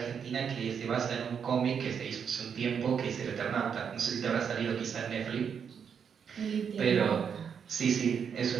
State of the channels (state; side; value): quieter; left; 7.2 dB